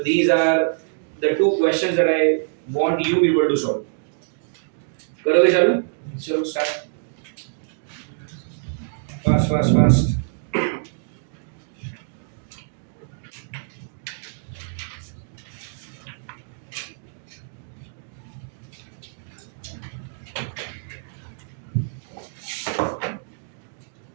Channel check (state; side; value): silent; left; digital silence